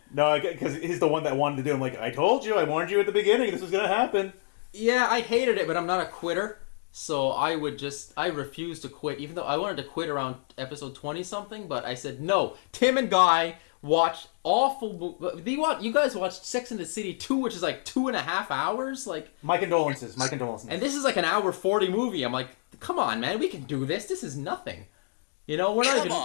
No, because he's the one that wanted to do it. I'm like, I told you, I warned you at the beginning, this was going to happen. Yeah, I hated it, but I'm not a quitter. So I refused to quit, even though I wanted to quit around episode 20-something, but I said, no, Tim and Guy watched awful... You guys watched Sex and the City 2, which is like 2.5 hours? Like, My condolences. And this is like an hour 40 movie. I'm like, come on, man, we can do this. This is nothing. You know, we're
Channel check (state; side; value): silent; right; digital silence